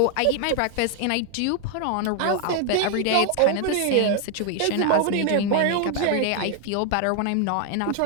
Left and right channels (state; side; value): different; both; correlation 0.00